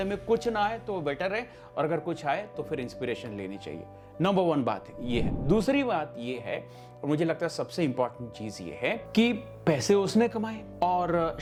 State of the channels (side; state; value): both; identical; correlation 1.00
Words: में कुछ ना आए तो बेटर है, और अगर कुछ आए तो फिर इंस्पिरेशन लेनी चाहिए। नंबर 1 बात ये है। दूसरी बात ये है, और मुझे लगता है सबसे इंपॉर्टेंट चीज ये है कि पैसे उसने कमाए और